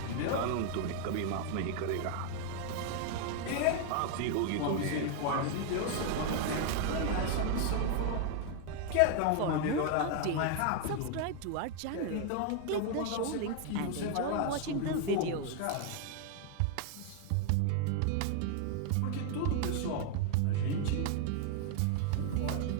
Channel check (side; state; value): both; different; correlation 0.00